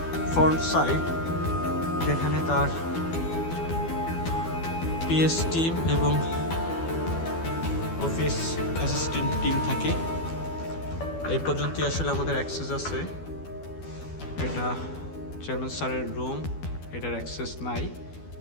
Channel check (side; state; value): right; late; 12 ms